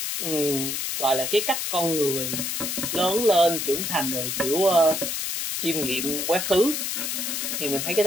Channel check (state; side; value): noise; left; hiss, 2 dB below the sound